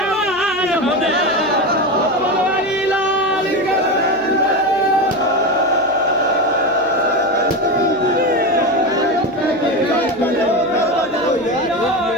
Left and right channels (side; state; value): left; noise; hum, 25 dB below the sound